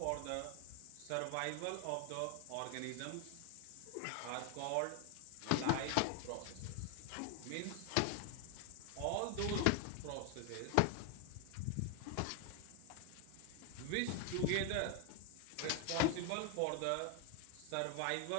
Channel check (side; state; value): both; different; correlation 0.00